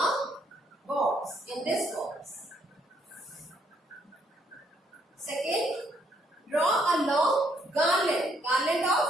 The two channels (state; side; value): normal; both; correlation 0.71